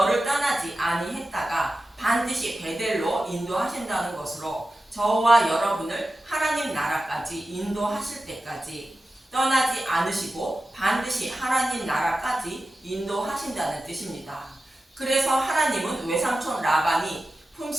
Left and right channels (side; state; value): both; normal; correlation 0.93